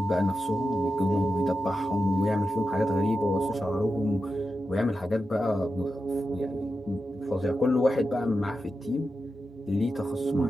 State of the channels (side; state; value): both; normal; correlation 0.91